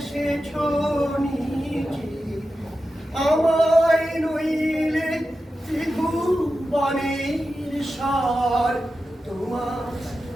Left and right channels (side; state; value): both; normal; correlation 0.92